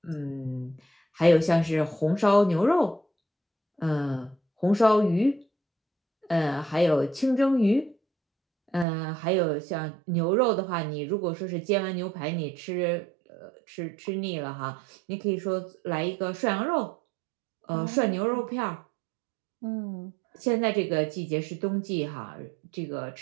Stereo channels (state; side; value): drops out; left; at 8.8 s